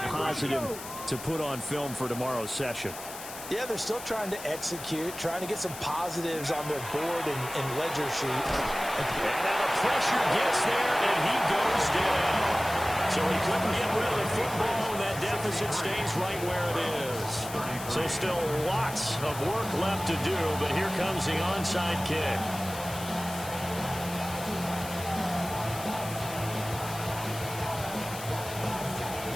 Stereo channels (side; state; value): left; noise; hiss, 12 dB below the sound